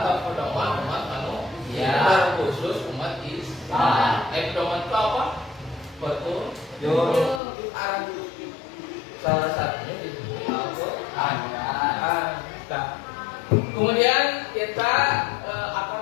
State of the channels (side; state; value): right; drops out; at 7.4 s